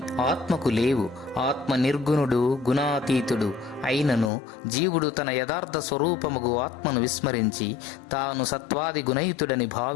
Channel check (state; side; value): drops out; right; at 4.3 s